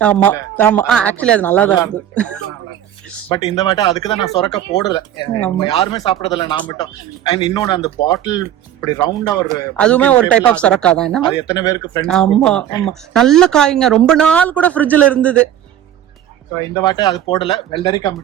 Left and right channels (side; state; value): left; quieter; 10.9 dB